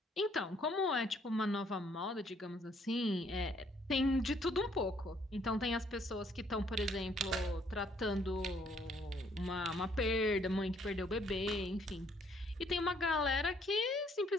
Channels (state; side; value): normal; both; correlation 0.65